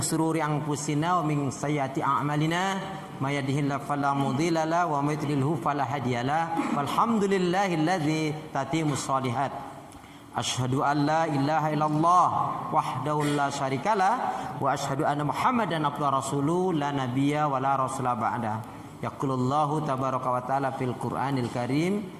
anfusina wa min sayyiati a'malina may yahdihillahu fala mudilla lahu wa may yudlilhu fala hadiyalah walhamdulillahilladzi tatimmus shalihat. Asyhadu an la ilaha illallah wahdahu la syarikalah wa asyhadu anna Muhammadan abduhu rasuluhu la nabiyya wa la rasula ba'da. Yaqulullahu tabaraka wa ta'ala fil Qur'anil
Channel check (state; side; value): identical; both; correlation 1.00